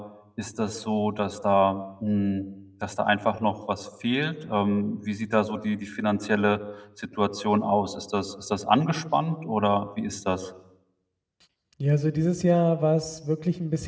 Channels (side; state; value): both; identical; correlation 1.00